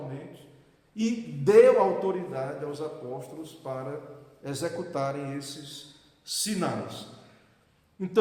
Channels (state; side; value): identical; both; correlation 1.00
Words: e deu autoridade aos apóstolos para executarem esses sinais.